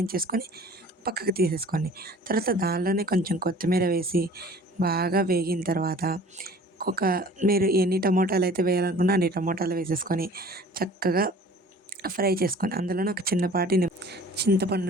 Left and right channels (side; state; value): both; normal; correlation 0.48